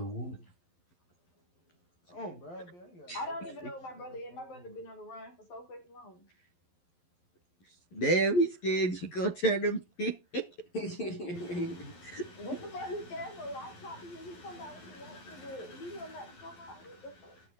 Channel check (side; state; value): right; late; 11 ms